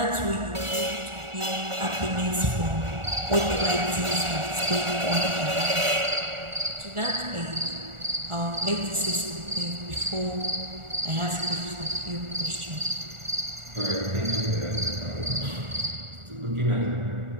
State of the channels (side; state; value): left; late; 1.4 ms